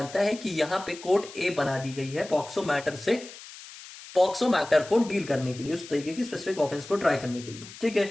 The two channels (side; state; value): left; noise; hiss, 16 dB below the sound